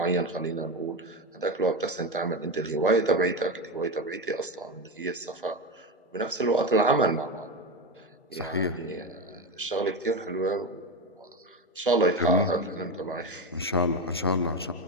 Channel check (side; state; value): both; normal; correlation 0.16